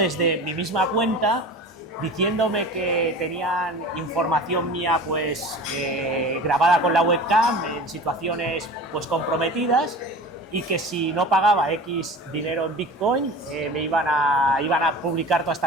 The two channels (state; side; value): normal; both; correlation 0.37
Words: mi misma cuenta diciéndome que tenían información mía pues grabada con la webcam en situaciones pues comprometidas y que si no pagaba X dinero en Bitcoin me iban a publicar todas